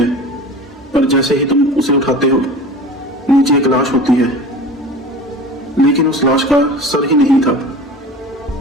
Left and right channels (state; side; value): normal; both; correlation 0.37